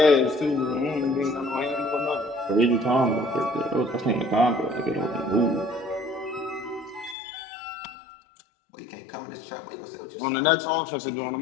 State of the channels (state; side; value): drops out; right; at 7.2 s